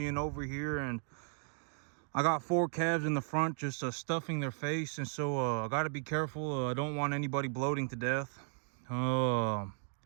over here. And I got 4 calves in the front just stuffing their face, and so I got to be careful. I don't want anybody bloating to death.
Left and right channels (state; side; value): silent; left; 54 dB below the other